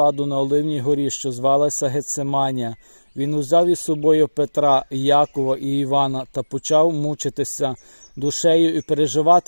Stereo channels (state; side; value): inverted; both; correlation -1.00